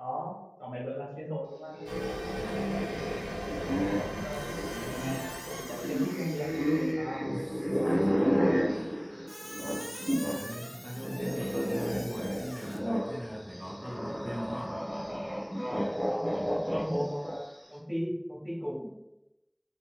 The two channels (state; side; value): identical; both; correlation 1.00